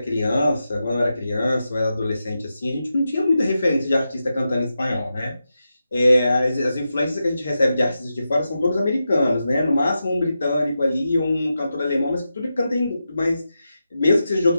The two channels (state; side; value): inverted; both; correlation -0.89